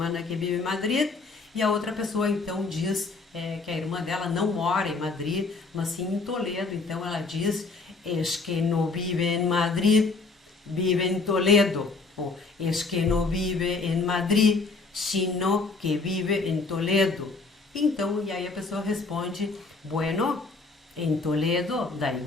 que vive em Madrid? E a outra pessoa então diz que a irmã dela não mora em Madrid, mas sim em Toledo. Então ela diz, es que no vive en Madrid, vive en Toledo. Ou es que no vive en Madrid, sino que vive en Toledo. Então, e aí a pessoa responde, bueno, en Toledo dá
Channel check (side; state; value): right; quieter; 3.9 dB